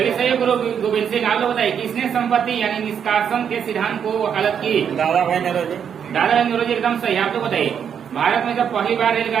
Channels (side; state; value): left; quieter; 7.9 dB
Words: सही है, गुरु गोविंद सिंह। आप लोग बताइए, किसने संपत्ति यानी निष्कासन के सिद्धांत को वकालत की? दादा भाई नौरोजी। एकदम सही। आप लोग बताइए, भारत में जब पहली बार